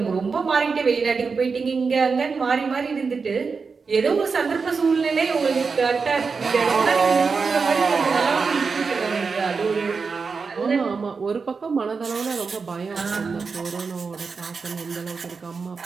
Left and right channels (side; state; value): left; quieter; 4.9 dB